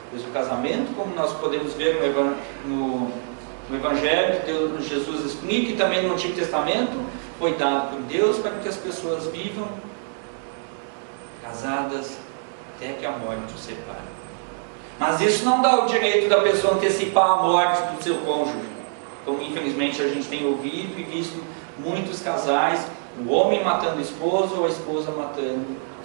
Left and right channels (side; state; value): left; silent; 58 dB below the other